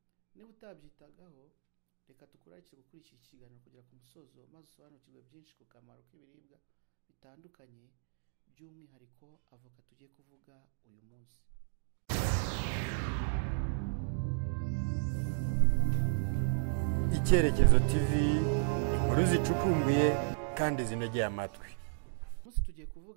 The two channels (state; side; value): silent; left; digital silence